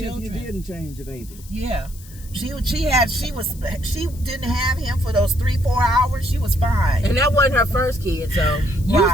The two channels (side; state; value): left; noise; hiss, 21 dB below the sound